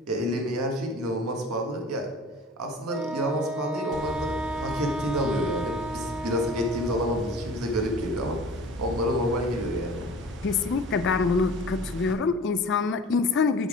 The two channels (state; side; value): normal; both; correlation 0.43